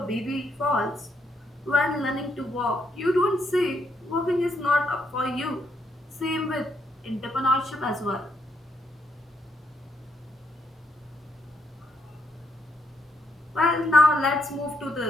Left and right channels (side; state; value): both; normal; correlation 0.75